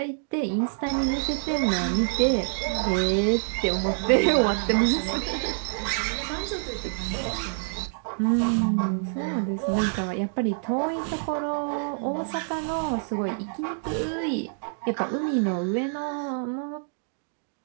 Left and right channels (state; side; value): silent; left; digital silence